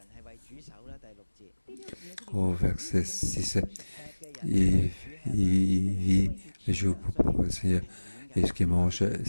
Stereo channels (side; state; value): both; inverted; correlation -1.00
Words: Au verset 6, il vit les jours pour le Seigneur. Et ce qu'il mange,